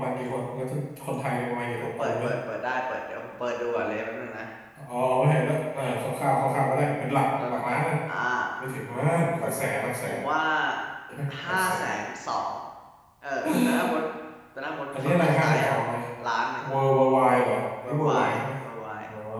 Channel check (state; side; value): identical; both; correlation 1.00